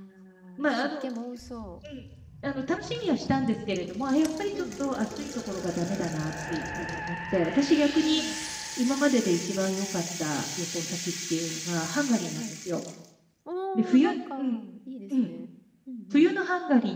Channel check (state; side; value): identical; both; correlation 1.00